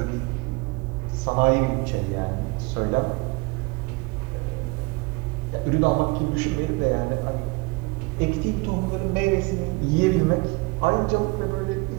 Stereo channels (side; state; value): left; quieter; 27.0 dB